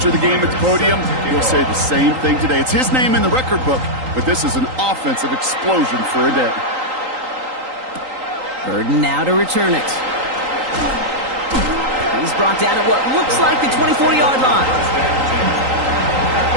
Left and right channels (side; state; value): left; late; 3.8 ms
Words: the game at the podium, he'll say the same thing today. It's his name in the record book, but this is an offensive explosion for a day. Burden now to return it. He's brought down at what looks like the 24-yard line.